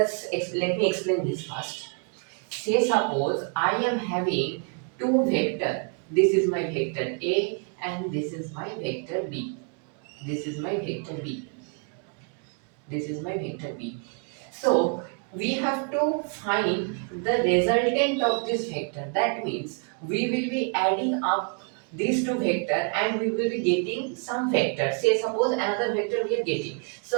me explain this first. Say suppose I am having two vector. This is my vector A and this is my vector B. This is my vector B. This is my vector B. So we have to find the resultant of this vector. That means we will be adding up these two vector and we will be getting some vector. Say suppose another vector we are getting.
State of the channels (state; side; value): quieter; left; 39.5 dB